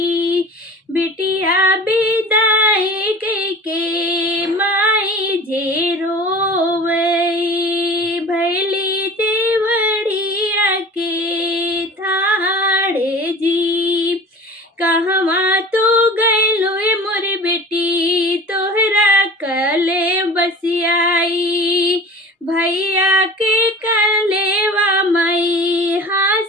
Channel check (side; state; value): both; normal; correlation 0.39